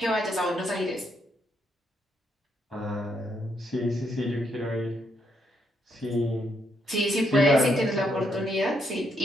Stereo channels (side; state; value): both; normal; correlation 0.76